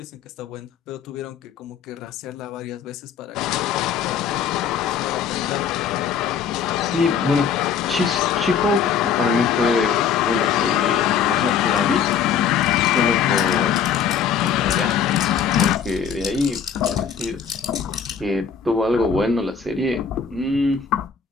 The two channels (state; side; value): quieter; right; 7.2 dB